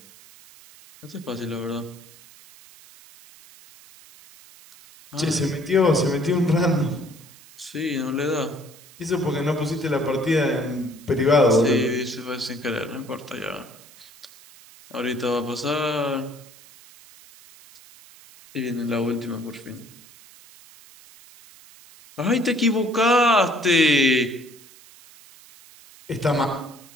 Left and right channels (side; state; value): right; noise; hiss, 23 dB below the sound